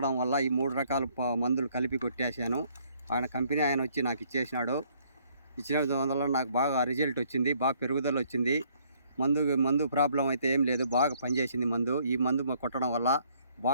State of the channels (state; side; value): inverted; both; correlation -0.65